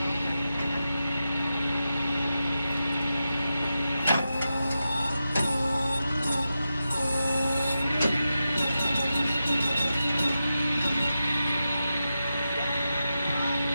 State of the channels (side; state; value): both; inverted; correlation -0.91